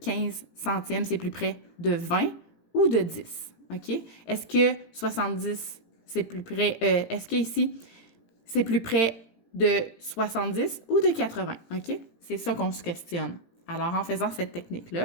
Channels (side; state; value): right; late; 18 ms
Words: centièmes, c'est plus près de 20 ou de 10? OK? Est-ce que 70, c'est plus près... est-ce que ici, c'est plus près de 70 ou de 80? OK? C'est ça qu'on se questionne. Alors, en faisant cette